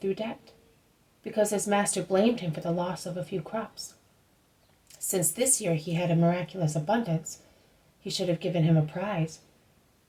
debt, because his master blamed him for the loss of a few crops. Since this year he had a miraculous abundance, he should have given him a prize.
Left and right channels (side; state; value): both; identical; correlation 1.00